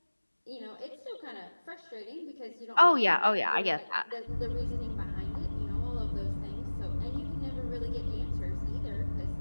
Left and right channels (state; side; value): inverted; both; correlation -1.00